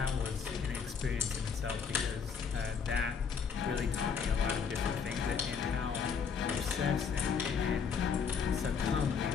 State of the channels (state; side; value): quieter; right; 6.2 dB